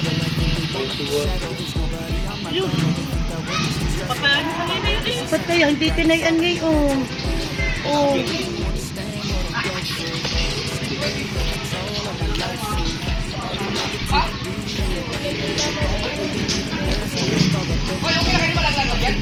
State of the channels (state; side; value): identical; both; correlation 1.00